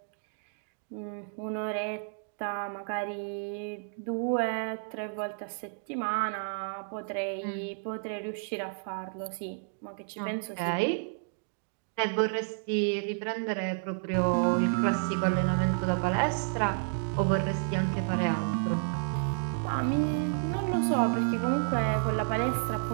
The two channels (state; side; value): silent; left; digital silence